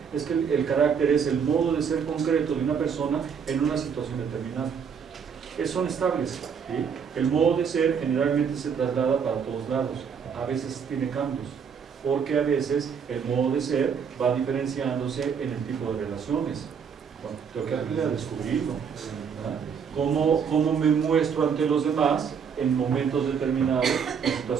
es que el carácter es el modo de ser concreto de una persona en una situación determinada. Son estables. ¿Sí? El modo de ser generalmente se traslada para todos lados, a veces tiene cambios, porque a veces el modo de ser va diferenciándose en el tipo de relaciones. Bueno, tengo que aprender a descubrirlo. ¿Cómo me muestro ante los demás en momentos determinados, en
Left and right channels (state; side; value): quieter; left; 6.8 dB